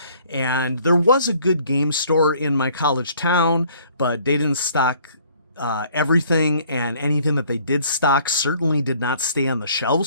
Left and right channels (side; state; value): both; inverted; correlation -0.58